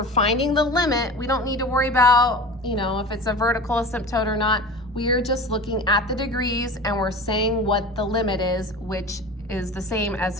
finding the limit, we don't need to worry about, you know, if it's a vertical asymptote or not. We are just looking at the degrees and we're saying what the limit is, which is the same as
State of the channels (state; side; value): normal; both; correlation 0.34